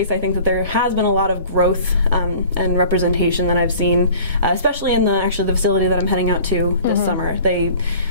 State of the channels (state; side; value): inverted; both; correlation -0.46